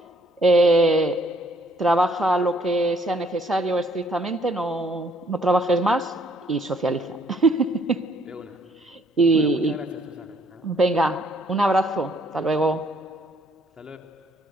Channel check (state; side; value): normal; both; correlation 0.65